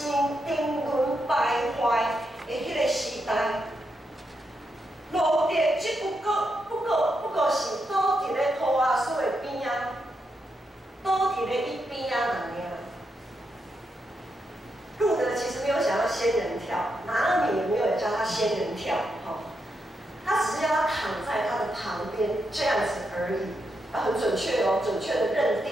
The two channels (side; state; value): both; normal; correlation 0.83